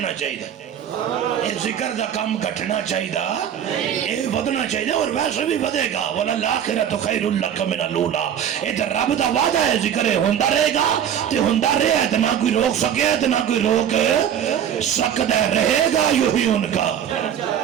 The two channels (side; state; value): left; quieter; 9.3 dB